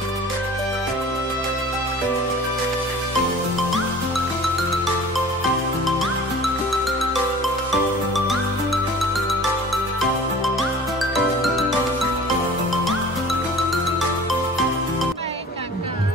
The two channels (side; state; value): both; normal; correlation 0.43